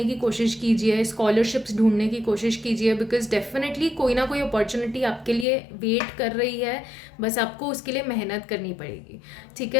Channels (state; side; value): drops out; right; at 5.5 s